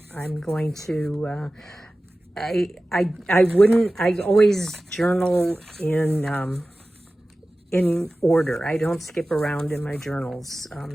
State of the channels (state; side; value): normal; both; correlation 0.96